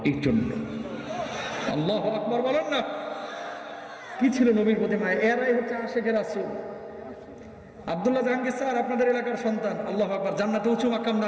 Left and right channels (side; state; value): both; identical; correlation 1.00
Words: এই জন্য। আল্লাহু আকবার বলেন না। কি ছিল নবীর প্রতি মায়া? এরাই হচ্ছে আশিকে রাসূল। আব্দুল্লাহ জাহাঙ্গীর স্যার আপনাদের এলাকার সন্তান, আল্লাহু আকবার, জান্নাতে উঁচু মাকাম